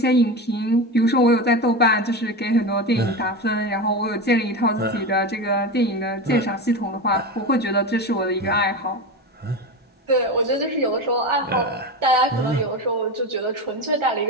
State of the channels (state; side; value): normal; both; correlation 0.22